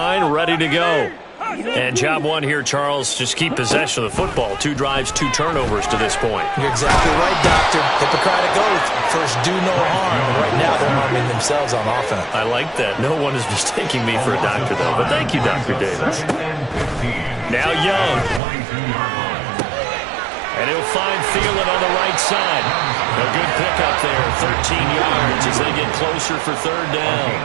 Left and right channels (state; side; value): drops out; left; at 18.4 s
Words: ready to go. And job one here, Charles, just keep possession of the football. 2 drives, 2 turnovers to this point. You're exactly right, Doctor. Hippocratic oath. First, do no harm. And right now, they're harming themselves on offense. I like that. No one is mistaking me for a doctor, though. But thank you, Dr. Davis. Now Young. And he'll find Thielen on the right side. A good pickup there, 13 yards as they get closer for third